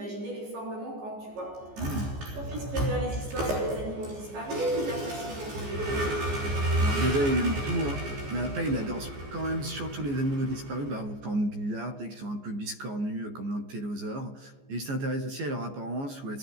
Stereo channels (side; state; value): left; late; 14 ms